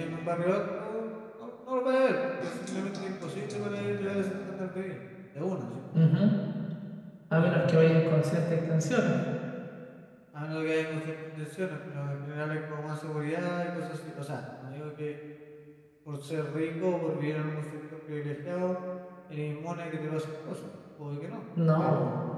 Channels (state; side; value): identical; both; correlation 1.00